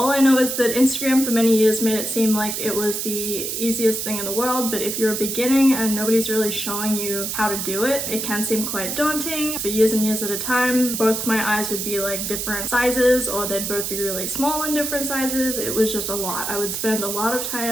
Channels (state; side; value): noise; right; hiss, 3 dB below the sound